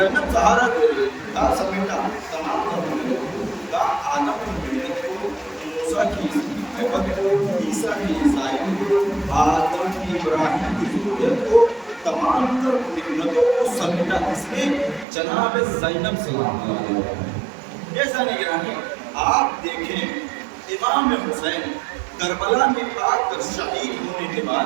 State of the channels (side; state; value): left; drops out; at 15.1 s